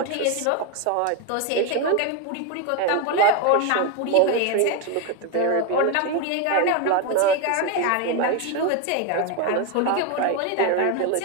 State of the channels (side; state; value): both; different; correlation 0.02